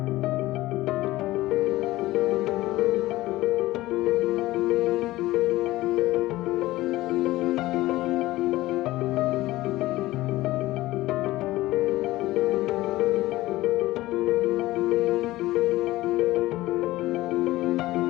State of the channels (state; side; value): quieter; right; 17.5 dB